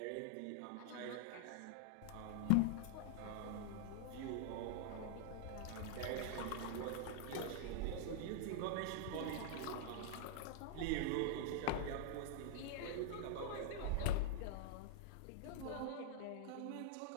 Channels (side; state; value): both; different; correlation -0.01